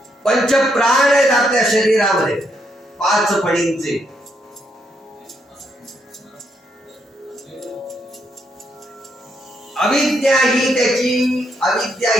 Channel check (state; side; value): normal; both; correlation 0.76